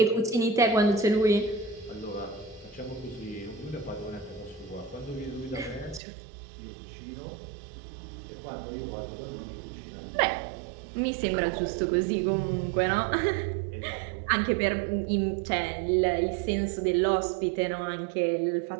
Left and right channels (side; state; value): left; drops out; at 6.0 s